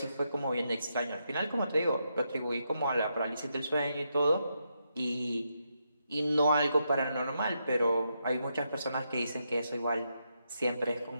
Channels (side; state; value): both; inverted; correlation -0.81